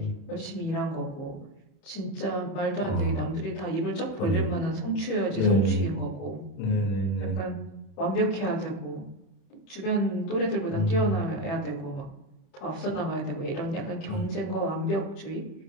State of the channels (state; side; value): late; right; 30 ms